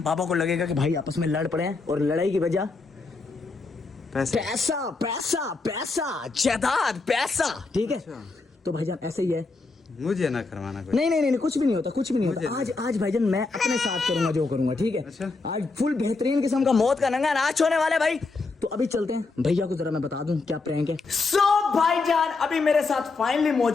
बाबा को लगेगा कि भाई आपस में लड़ पड़े हैं और लड़ाई की वजह पैसा जायदाद पैसा, ठीक है। तो भाईजान ऐसे ही है, मुझे ना करवाना कुछ। नहीं कुछ भी नहीं होता। आज भाईजान मैं अपने साथ करूंगा जो करूंगा, ठीक है। अच्छा। आज फुल बेहतरीन किस्म का मौत का नंगा नाच होने वाला है भाई। तो अभी चलते हैं, भैया को जरा मैं बता दूं क्या प्रैंक है। भाईजान अभी मेरे साथ फाइनली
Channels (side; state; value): right; quieter; 3.9 dB